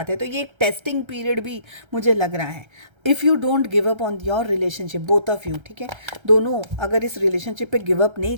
हैं, तो ये एक टेस्टिंग पीरियड भी मुझे लग रहा है। If you don't give up on your relationship, both of you, ठीक है, दोनों अगर इस रिलेशनशिप पे गिव अप नहीं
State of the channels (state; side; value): late; left; 1.3 ms